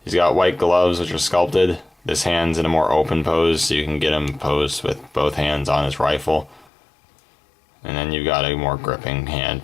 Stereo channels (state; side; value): drops out; right; at 6.7 s